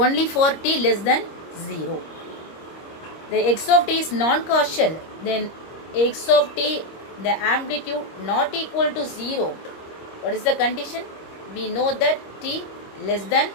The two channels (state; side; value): late; right; 26 ms